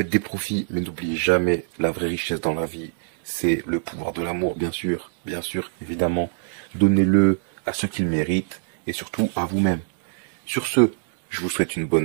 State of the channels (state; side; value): silent; left; digital silence